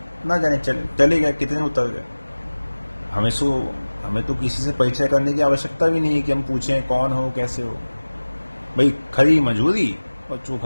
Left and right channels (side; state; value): both; inverted; correlation -1.00